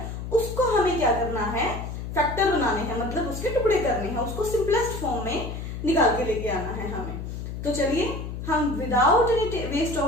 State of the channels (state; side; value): noise; left; hum, 7 dB below the sound